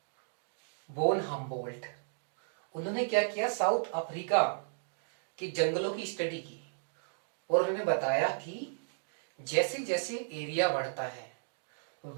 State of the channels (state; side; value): silent; left; digital silence